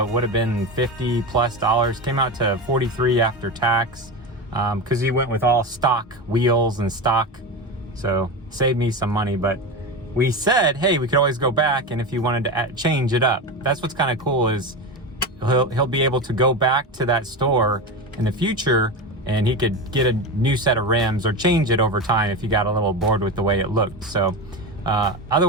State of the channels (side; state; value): both; normal; correlation 0.21